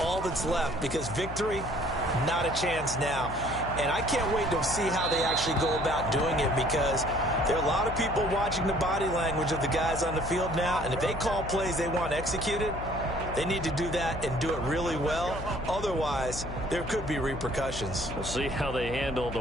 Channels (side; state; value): left; noise; hum, 9 dB below the sound